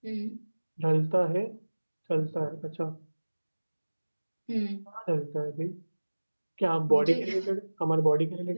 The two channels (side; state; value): both; inverted; correlation -1.00